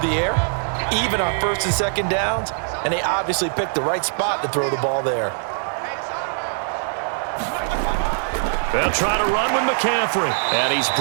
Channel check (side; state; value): left; silent; 64 dB below the other